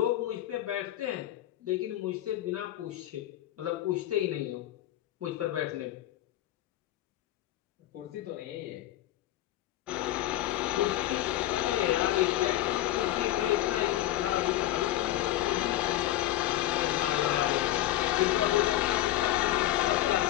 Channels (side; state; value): right; quieter; 14.2 dB